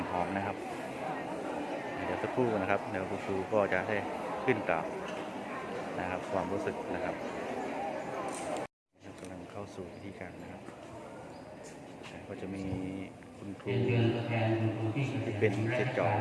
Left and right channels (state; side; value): identical; both; correlation 1.00